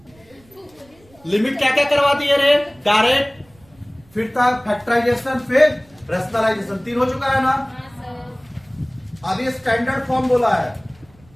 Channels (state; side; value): noise; right; rumble, 30 dB below the sound